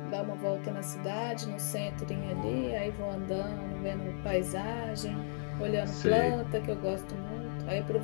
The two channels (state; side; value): silent; right; 55 dB below the other